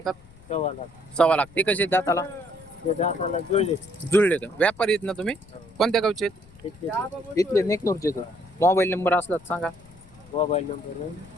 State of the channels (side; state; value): left; noise; rumble, 24 dB below the sound